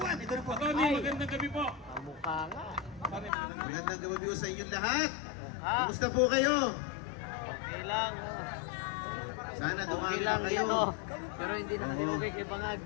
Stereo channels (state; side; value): drops out; right; at 3.3 s